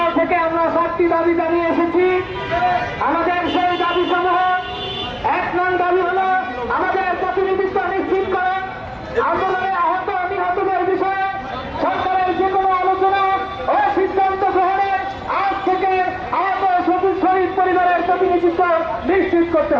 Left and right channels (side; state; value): both; identical; correlation 1.00